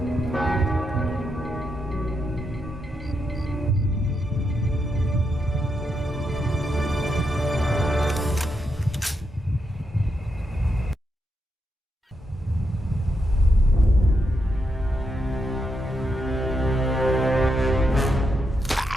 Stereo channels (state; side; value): normal; both; correlation 0.82